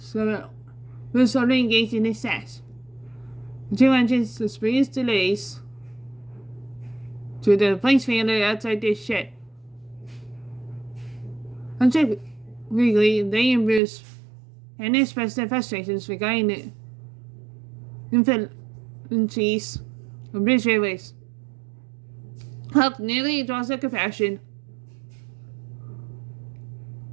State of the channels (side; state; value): left; drops out; at 13.8 s